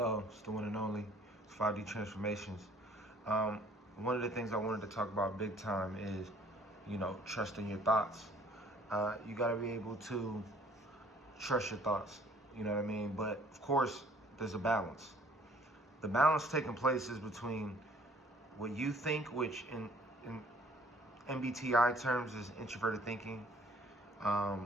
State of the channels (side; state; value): both; normal; correlation 0.57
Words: It's the one and only. It's 5D Transformations. One of the things I wanted to talk about big time is, trusting your thoughts. You got to be able to trust your thoughts. You know what I mean? But of course, there's a balance. The balance taking place is between what you think, which in MBTI terms is introverted thinking,